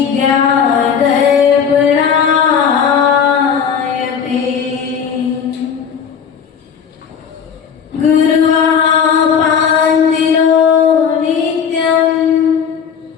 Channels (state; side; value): quieter; right; 7.2 dB